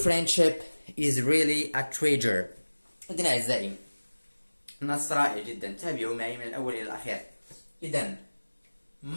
is really a treasure. إذن أعزائي، نص رائع جدا، تابعوا معي من الأول إلى الأخير. إذن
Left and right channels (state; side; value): inverted; both; correlation -1.00